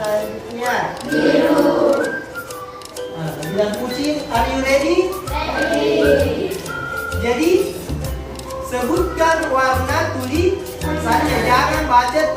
biru. Nah, bilang kucing, are you ready? Jadi sebutkan warna tulisannya, jangan baca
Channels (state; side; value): identical; both; correlation 1.00